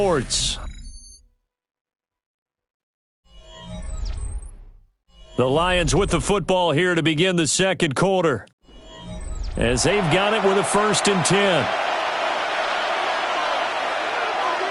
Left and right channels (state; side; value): identical; both; correlation 1.00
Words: The Lions with the football here to begin the second quarter, as they've got it with a 1st and 10.